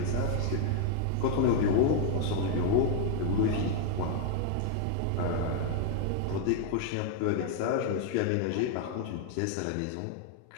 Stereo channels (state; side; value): different; both; correlation 0.00